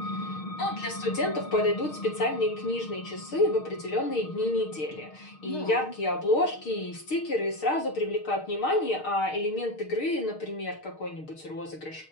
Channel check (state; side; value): late; right; 6.5 ms